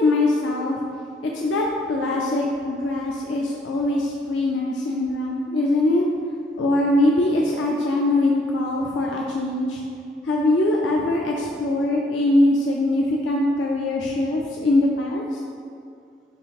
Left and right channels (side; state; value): both; normal; correlation 0.66